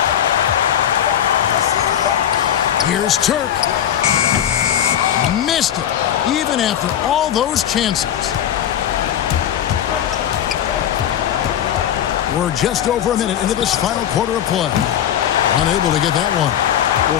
Here's Turk. Missed it, even after all those chances. We're just over a minute into this final quarter of play. Unable to get that one.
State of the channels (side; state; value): right; quieter; 10.2 dB